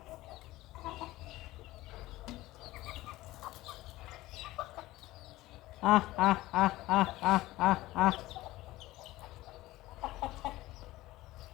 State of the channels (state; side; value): quieter; right; 17.5 dB